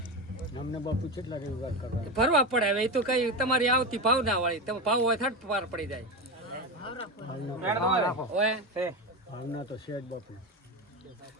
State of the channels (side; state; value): both; normal; correlation 0.18